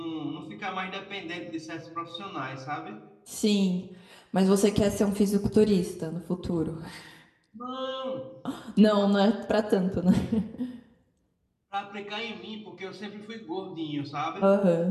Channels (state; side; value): identical; both; correlation 1.00